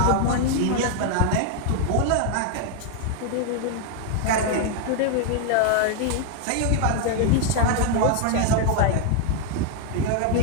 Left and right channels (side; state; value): both; different; correlation 0.00